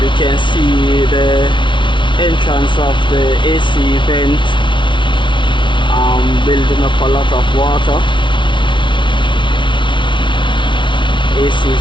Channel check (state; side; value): late; right; 0.24 ms